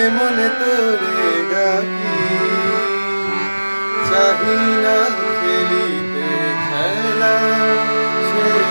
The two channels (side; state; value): both; inverted; correlation -1.00